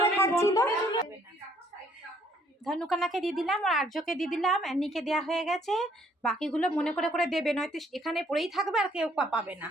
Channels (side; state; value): both; normal; correlation 0.65